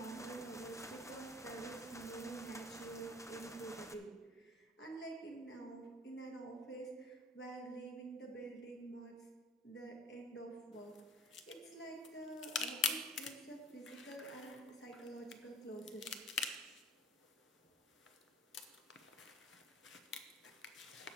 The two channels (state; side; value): normal; both; correlation 0.46